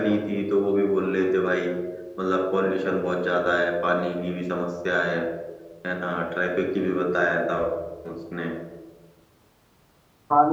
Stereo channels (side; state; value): both; identical; correlation 1.00